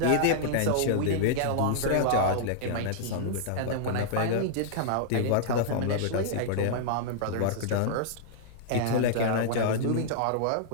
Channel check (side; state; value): both; different; correlation -0.01